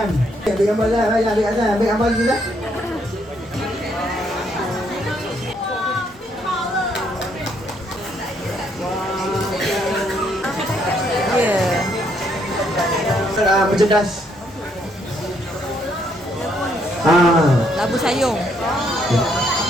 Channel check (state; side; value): normal; both; correlation 0.71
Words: Ambil gambar lah, ambil atas, ambil gambar dulu lah. Merchandise. Labu sayung.